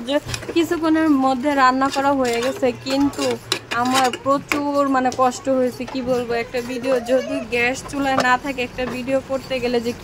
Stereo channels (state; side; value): identical; both; correlation 1.00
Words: যে কিছুক্ষণের মধ্যে রান্না করা হয়ে গেছে, কিন্তু আমার প্রচুর মানে কষ্ট হয়েছে। কি বলবো, একটা ভিডিও যদি গ্যাস চুলায় না থাকে, একটা ভিডিও করতে গেলে যে